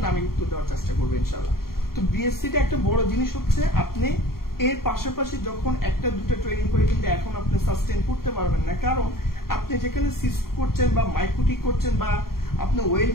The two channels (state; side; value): late; right; 0.93 ms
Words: আমি উত্তর দেওয়ার চেষ্টা করবো ইনশাআল্লাহ। তো বিএসসিটা একটা বড় জিনিস হচ্ছে আপনি এর পাশাপাশি যখন একটা দুটো ট্রেনিং করে কিন্তু এখন আপনি সাস্টেইন করতে পারবেন না, কারণ আপনি যেখানে সিস্ক করছেন বা মাইক্রোটিক করছেন বা আপনি